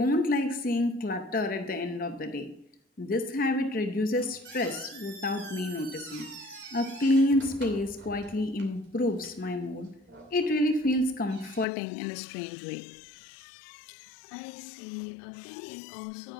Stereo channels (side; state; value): right; drops out; at 11.7 s